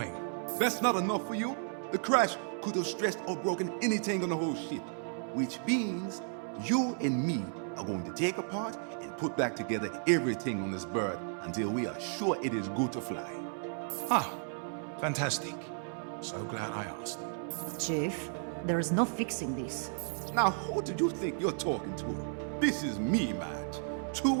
That's not enough for you? The crash could have stressed or broken anything on the whole ship. Which means you and me are going to take apart and put back together everything on this bird until we are sure it is good to fly. Ah, fantastic. So glad I asked. Chief, there is no fixing this. Now, who do you think you're talking to? This is me, Madge. 2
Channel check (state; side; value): silent; left; 55 dB below the other